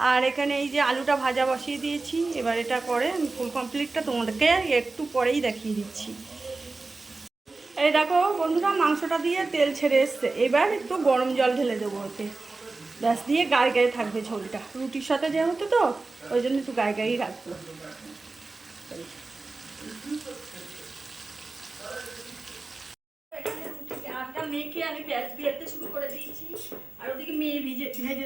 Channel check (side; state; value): left; quieter; 3.6 dB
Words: আর এখানে এই যে আলুটা ভাজা বসিয়ে দিয়েছি। এবার এটা করে আমি ফুল কমপ্লিটটা তোমাদেরকে একটু পরেই দেখিয়ে দিচ্ছি। এই দেখো বন্ধুরা, মাংসটা দিয়ে তেল ছেড়ে এসছে। এবার একটু গরম জল ঢেলে দেবো ওতে, ব্যাস, দিয়ে গায়ে গায়ে থাকবে ঝোলটা। রুটির সাথে যেহেতু, তো ওই জন্য একটু গায়ে গায়েই রাখবো। আটা মেখে আমি বেলতে শুরু করে দিয়েছি, আর ওদিকে মেয়ে ভেজে